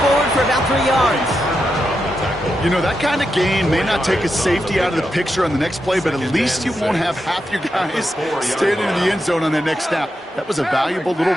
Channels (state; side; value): normal; both; correlation 0.86